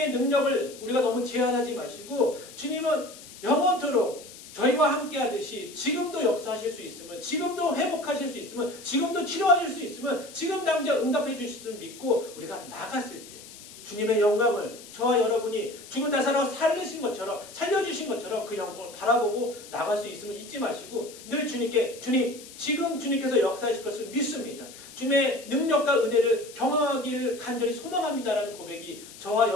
능력을 우리가 너무 제한하지 마시고 주님은 영원토록 저희와 함께 하듯이 지금도 역사하실 수 있으면 지금도 회복하실 수 있으면 지금도 치료하실 수 있으면 지금 당장 응답해 주실 수 믿고 우리가 나갔을 때 주님의 영광을 저와 여러분이 죽은 나사로 살려주신 것처럼 그 영광을 바라보고 나갈 수 있음을 잊지 마시고 늘 주님께 주님 지금 주님께서 역사하실 것을 믿습니다. 주님의 능력과 은혜를 경험하기를 간절히 소망합니다라는 고백이 저와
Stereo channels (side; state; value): left; noise; hiss, 17 dB below the sound